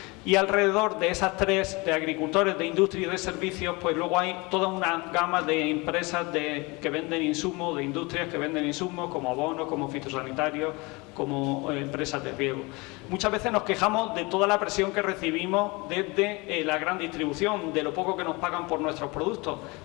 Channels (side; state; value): right; quieter; 25.6 dB